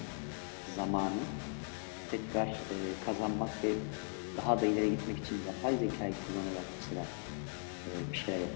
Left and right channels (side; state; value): right; silent; 52 dB below the other